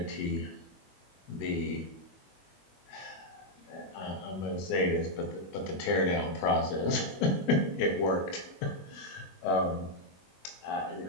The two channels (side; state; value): right; late; 21 ms